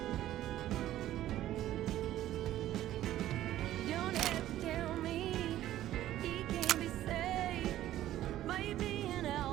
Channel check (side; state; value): left; quieter; 13.4 dB